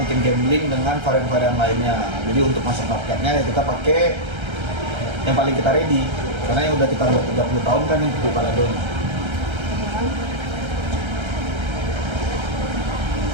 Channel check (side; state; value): left; late; 1.3 ms